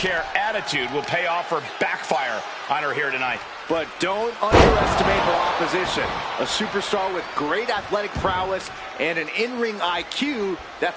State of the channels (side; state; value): both; identical; correlation 1.00